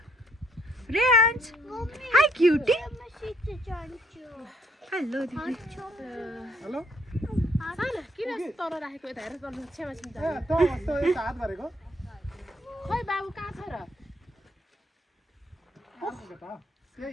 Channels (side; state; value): both; normal; correlation 0.68